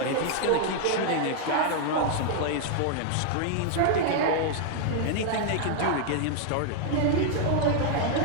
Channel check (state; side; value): different; both; correlation 0.00